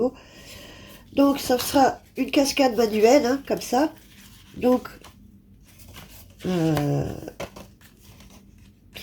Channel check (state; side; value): identical; both; correlation 1.00